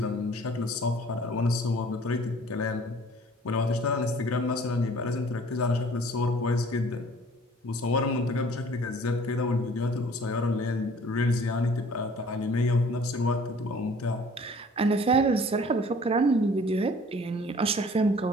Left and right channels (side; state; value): both; normal; correlation 0.51